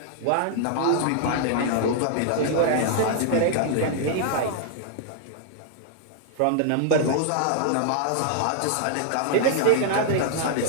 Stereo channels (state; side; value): different; both; correlation 0.00